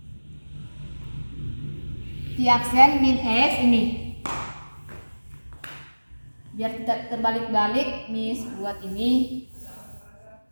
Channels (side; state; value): both; inverted; correlation -1.00